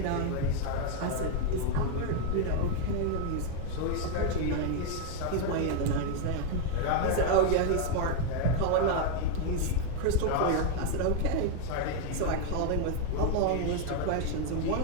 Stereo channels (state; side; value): different; both; correlation 0.01